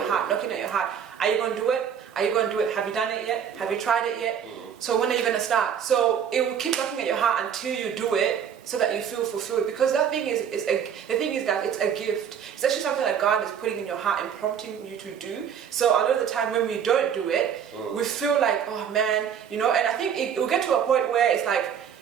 heart, knocking at your heart. Are you going to do it? Are you going to do it? Have you done it yet? Have you tried it yet? So when are you going to start? So it will keep knocking at your heart until you do it, so that you feel fulfilled. Because that thing is the thing is that it's a gift. It's actually something that God is putting in your heart and prompting you to do. So a lot of the time when we don't do it, we feel like, oh man, and I think it will get to a point where it's like,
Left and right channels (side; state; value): left; quieter; 8.1 dB